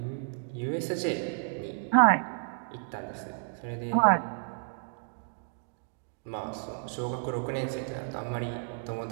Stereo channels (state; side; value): silent; left; digital silence